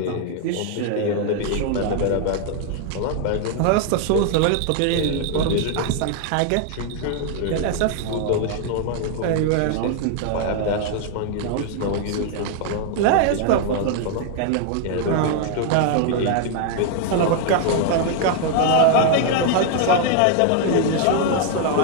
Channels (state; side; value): different; both; correlation 0.00